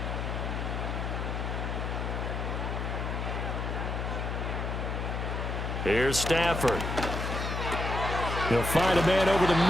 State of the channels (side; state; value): left; noise; hum, 3 dB below the sound